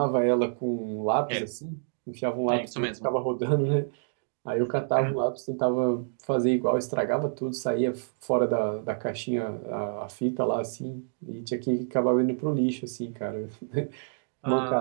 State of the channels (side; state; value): left; silent; digital silence